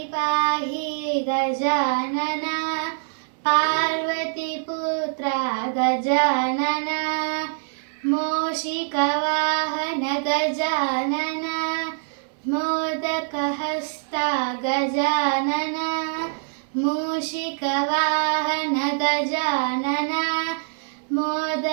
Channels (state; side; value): silent; left; digital silence